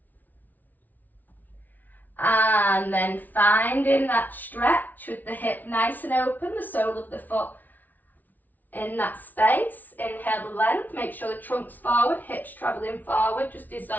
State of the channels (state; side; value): late; right; 0.081 ms